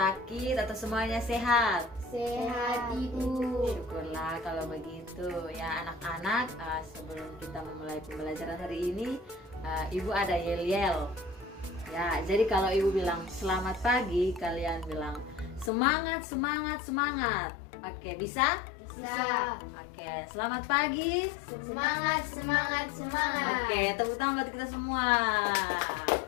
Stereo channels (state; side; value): drops out; right; at 15.7 s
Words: atau semuanya sehat? Sehat, Ibu. Syukurlah kalau begitu. Ya anak-anak, sebelum kita memulai pembelajaran hari ini, Ibu ada yel-yel. Ya, jadi kalau Ibu bilang selamat pagi, kalian bilang semangat, semangat, semangat. Oke, bisa? Bisa. Oke, selamat pagi. Semangat, semangat, semangat. Oke, tepuk tangan buat kita semua.